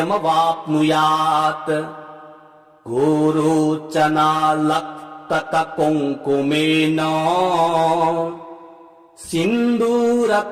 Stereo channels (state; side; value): identical; both; correlation 1.00